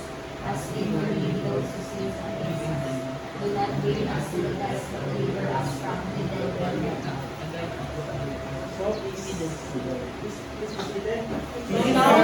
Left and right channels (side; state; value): both; identical; correlation 1.00